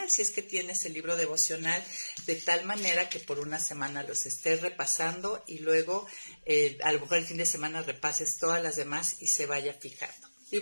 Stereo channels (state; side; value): inverted; both; correlation -1.00